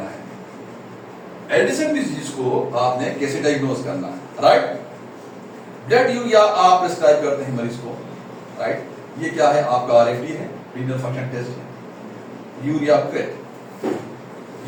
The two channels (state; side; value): identical; both; correlation 1.00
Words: है एडिसन डिजीज को, आपने कैसे डायग्नोज करना है, राइट। ब्लड यूरिया आप प्रिस्क्राइब करते हैं मरीज को, राइट। ये क्या है? आपका RFT है, रीनल फंक्शन टेस्ट है। Urea crate,